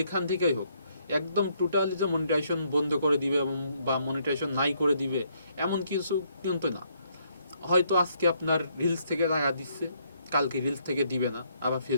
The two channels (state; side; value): inverted; both; correlation -0.70